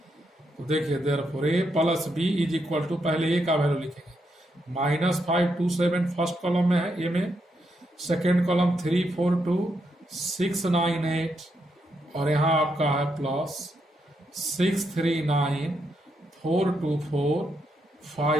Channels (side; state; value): both; normal; correlation 0.80